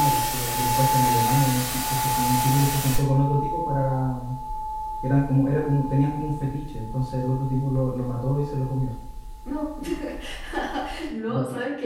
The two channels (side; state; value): both; identical; correlation 1.00